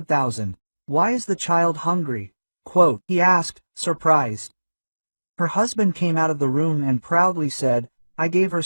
Why is the child hungry?" Quote, he asked, surprised. Her husband came out of the room and proudly said, "I gave her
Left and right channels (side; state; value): both; inverted; correlation -1.00